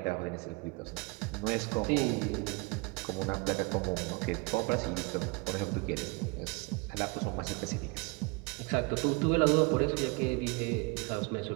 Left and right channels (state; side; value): quieter; left; 28.1 dB